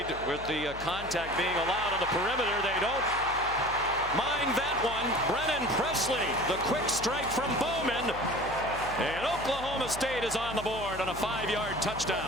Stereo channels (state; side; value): noise; left; hum, 14 dB below the sound